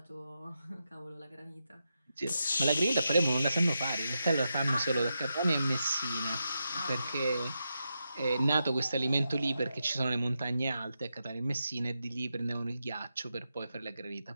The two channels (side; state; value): both; inverted; correlation -0.87